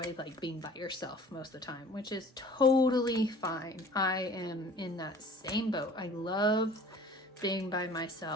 like being by yourself most of the time, which is totally fine. I am in that same boat. I love being by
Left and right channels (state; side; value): normal; both; correlation 0.47